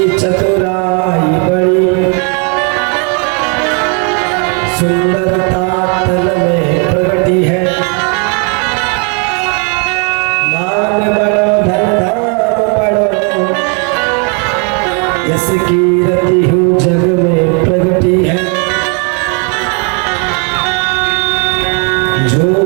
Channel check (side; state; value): left; quieter; 37.1 dB